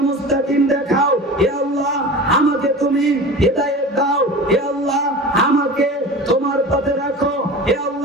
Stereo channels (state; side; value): normal; both; correlation 0.34